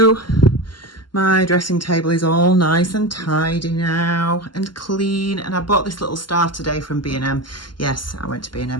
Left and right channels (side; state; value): right; late; 0.71 ms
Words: my dressing table is all nice and tidy now and clean. And I bought this little star today from B&M. Yes, I went to